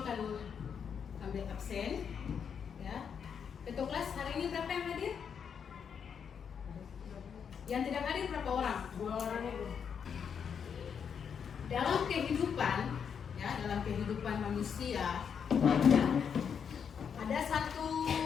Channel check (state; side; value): quieter; right; 7.2 dB